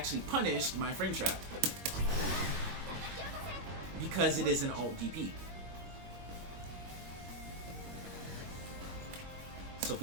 punished my frame trap because it is an alt DP. So if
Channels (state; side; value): late; left; 21 ms